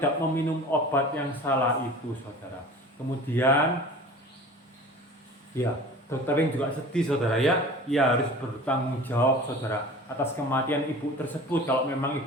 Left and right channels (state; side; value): normal; both; correlation 0.41